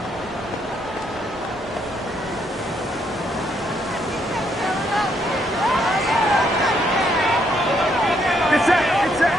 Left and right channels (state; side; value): normal; both; correlation 0.73